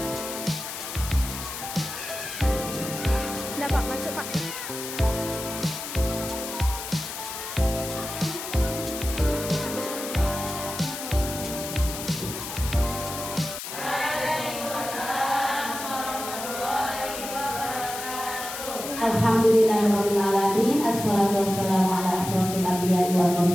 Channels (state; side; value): noise; left; hiss, 8 dB below the sound